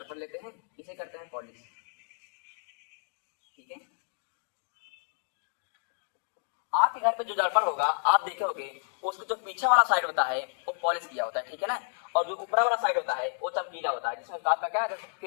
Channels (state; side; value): silent; right; digital silence